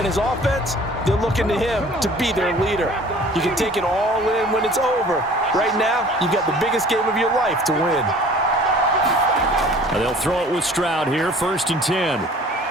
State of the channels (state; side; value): normal; both; correlation 0.49